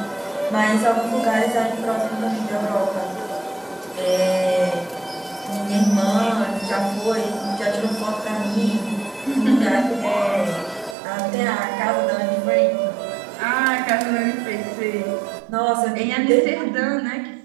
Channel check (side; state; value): left; drops out; at 11.0 s